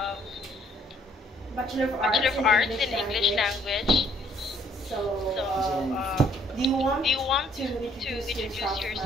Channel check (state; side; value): normal; both; correlation 0.63